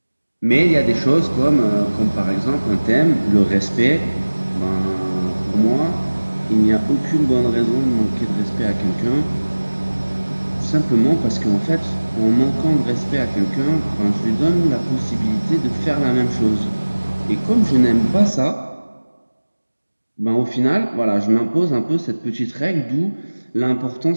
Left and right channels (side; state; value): both; inverted; correlation -1.00